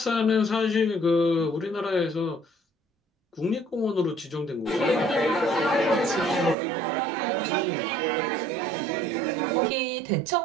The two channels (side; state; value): left; drops out; at 6.6 s